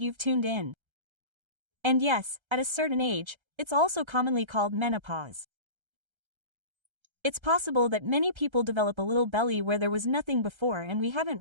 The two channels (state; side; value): late; left; 1.3 ms